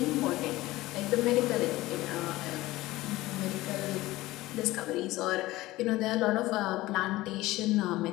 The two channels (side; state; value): right; quieter; 18.2 dB